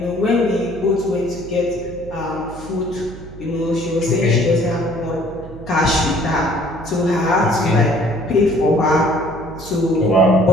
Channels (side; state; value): right; noise; hum, 15 dB below the sound